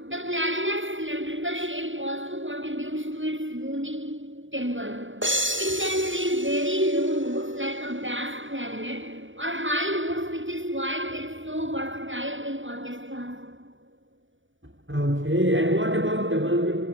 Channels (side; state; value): left; late; 0.56 ms